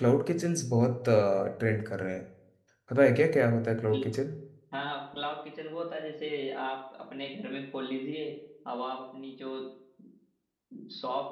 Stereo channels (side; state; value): both; identical; correlation 1.00